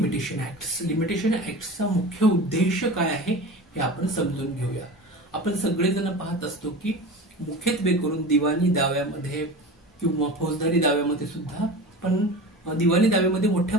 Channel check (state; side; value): normal; both; correlation 0.32